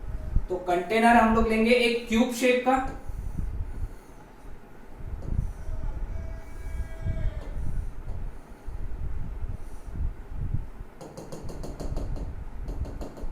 तो कंटेनर हम लोग लेंगे एक क्यूब शेप का,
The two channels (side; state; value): both; identical; correlation 1.00